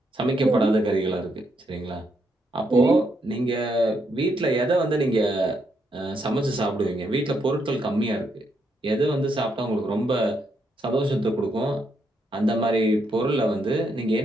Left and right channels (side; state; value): both; normal; correlation 0.77